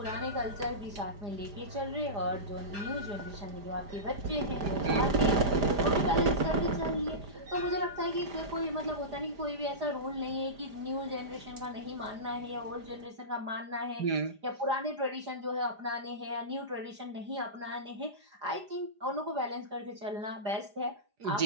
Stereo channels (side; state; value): left; late; 4.9 ms